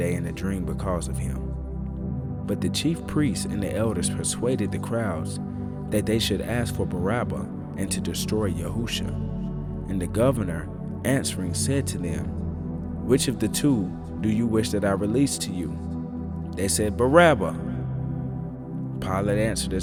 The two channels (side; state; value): both; identical; correlation 1.00